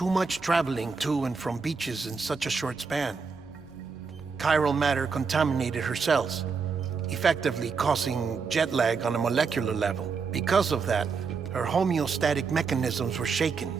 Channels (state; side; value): quieter; left; 5.1 dB